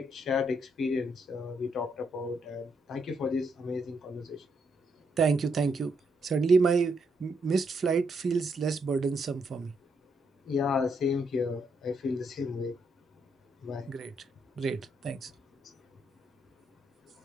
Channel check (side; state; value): both; normal; correlation 0.77